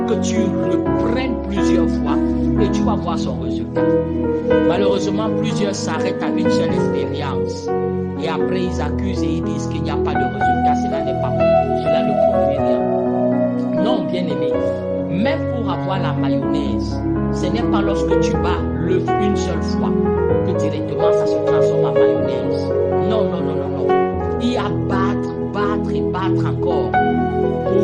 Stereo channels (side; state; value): both; identical; correlation 1.00